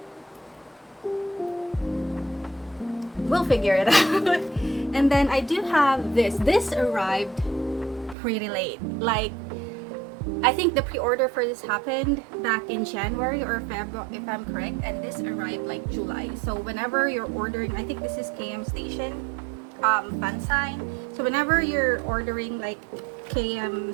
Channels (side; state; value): left; drops out; at 8.2 s